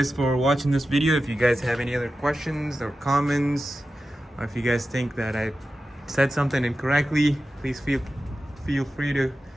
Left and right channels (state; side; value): normal; both; correlation 0.93